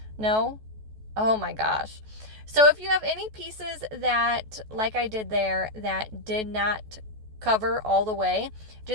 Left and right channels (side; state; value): left; late; 14 ms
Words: No? Oh my gosh. So if you have any pieces that, like I did there, that did not cover all the way,